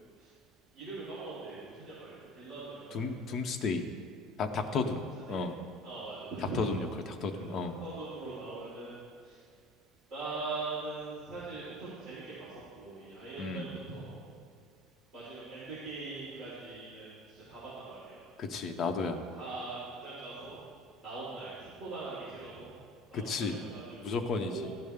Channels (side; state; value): both; normal; correlation 0.43